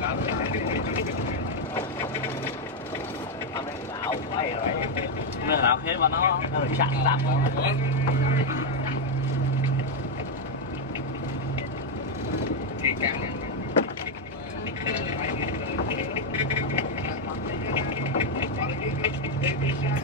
Mày lão hết mà nó chặn tạm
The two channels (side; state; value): both; normal; correlation 0.02